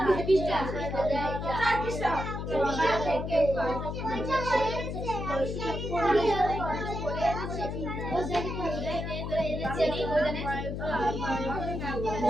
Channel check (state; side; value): noise; left; hum, 4 dB below the sound